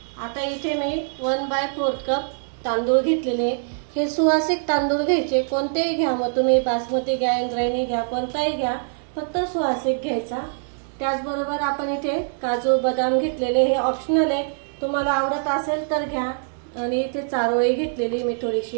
आता इथे मी 1/4 कप तांदूळ घेतलेले। हे सुवासिक तांदूळ घ्यायचे, कोणतेही घ्या, मग तुम्ही बासमती घ्या, इंद्रायणी घ्या, कोणताही घ्या, फक्त सुवासिक घ्यायचा। त्याचबरोबर आपण इथे काजू बदाम घेतलेले, हे ऑप्शनल आहे, तुम्हाला आवडत असेल तर घ्या। आणि इथे चारोळी घेतलेली मी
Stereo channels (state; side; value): silent; left; 59 dB below the other